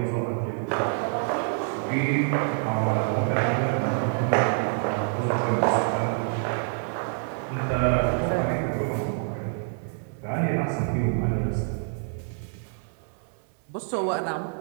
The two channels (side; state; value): left; silent; 60 dB below the other